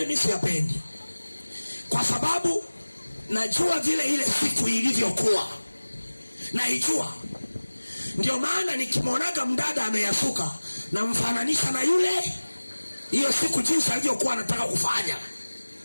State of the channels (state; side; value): inverted; both; correlation -1.00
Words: mimi siyapendi, kwa sababu najua vile ile siku ilivyokuwa, naijua. Ndio maana nikimwonaga mdada ameyasuka, namfananisha na yule hiyo siku jinsi alivyokuwa anataka kufanya.